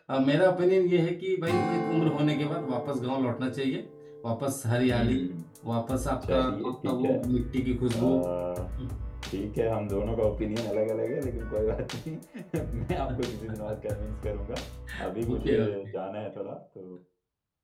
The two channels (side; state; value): both; identical; correlation 1.00